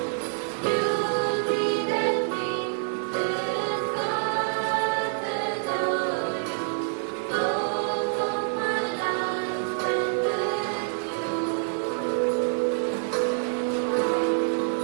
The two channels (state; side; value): silent; left; digital silence